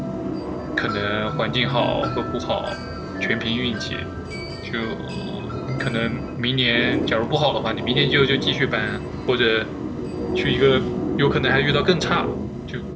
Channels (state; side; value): identical; both; correlation 1.00